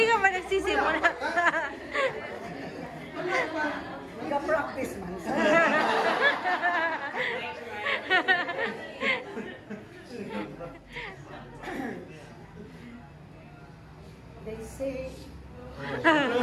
ka pa nagsisimula. Nag-practice man. They say,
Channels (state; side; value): identical; both; correlation 1.00